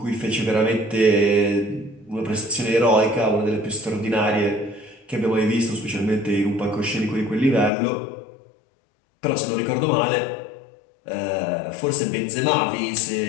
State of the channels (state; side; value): drops out; right; at 7.7 s